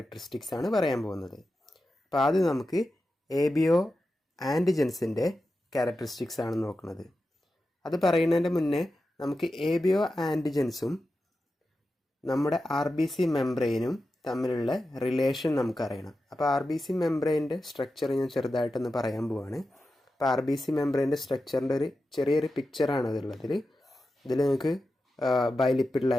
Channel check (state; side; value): normal; both; correlation 0.91